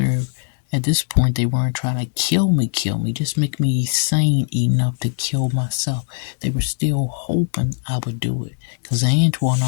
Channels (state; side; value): silent; right; 66 dB below the other